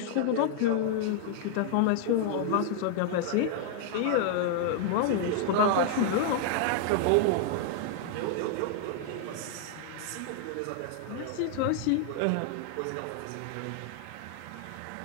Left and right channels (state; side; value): different; both; correlation 0.00